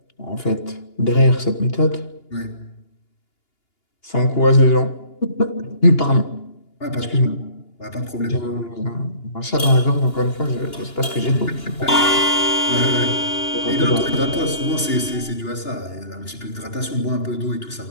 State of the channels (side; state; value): right; late; 2.8 ms